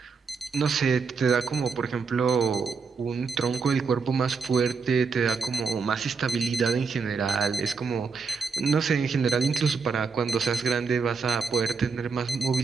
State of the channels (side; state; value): left; quieter; 5.1 dB